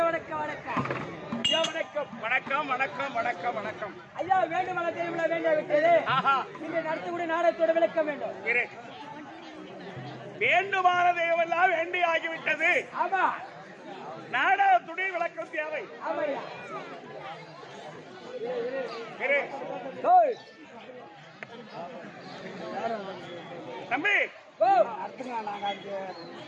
வணக்கம் ஐயா வேண்டும் வேண்டிய விட்டது நீங்க நடத்தக்கூடிய நாடகத்தோட விளக்கம் வேண்டும் வேண்டுமானதையெல்லாம் வேண்டி ஆகிவிட்டது ஆமா நாடகத்துடைய விளக்கம் தேவை தம்பி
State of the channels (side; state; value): both; identical; correlation 1.00